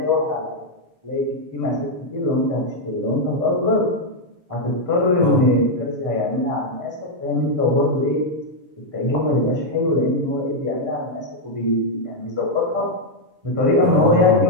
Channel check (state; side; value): late; left; 7.0 ms